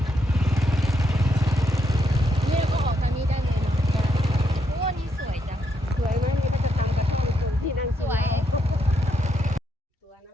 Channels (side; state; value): both; normal; correlation 0.78